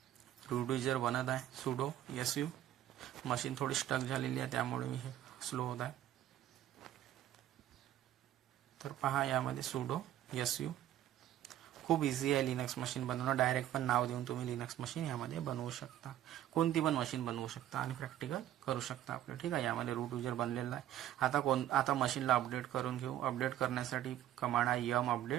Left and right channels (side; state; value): left; quieter; 12.5 dB